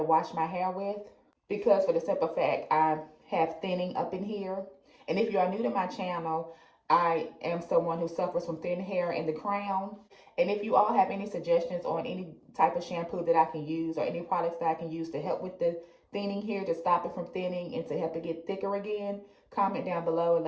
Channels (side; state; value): both; identical; correlation 1.00